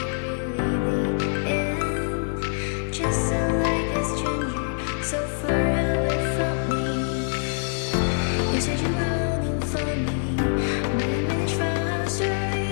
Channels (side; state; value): right; silent; digital silence